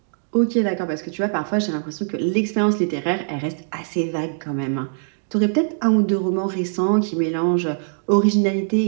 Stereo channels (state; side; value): silent; left; digital silence